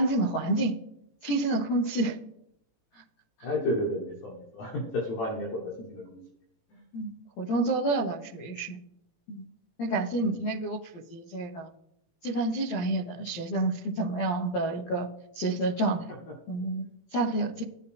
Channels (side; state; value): right; late; 17 ms